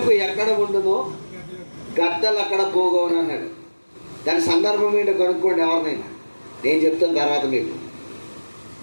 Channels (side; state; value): both; inverted; correlation -1.00